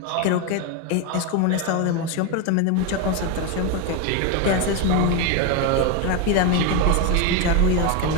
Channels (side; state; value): both; different; correlation 0.02